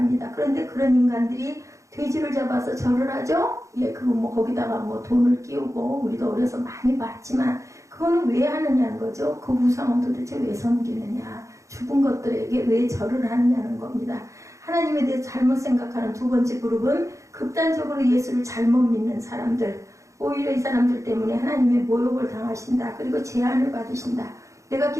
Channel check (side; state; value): left; late; 0.15 ms